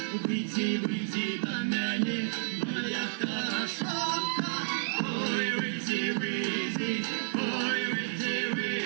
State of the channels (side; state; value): left; silent; 57 dB below the other